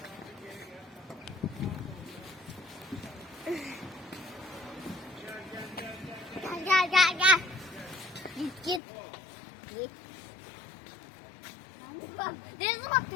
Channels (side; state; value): right; drops out; at 8.8 s